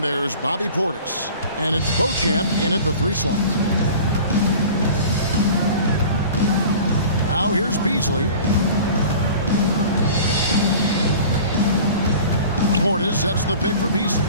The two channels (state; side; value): inverted; both; correlation -0.41